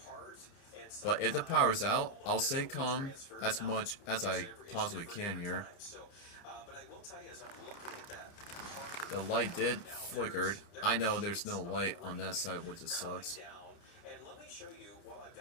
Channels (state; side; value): late; right; 29 ms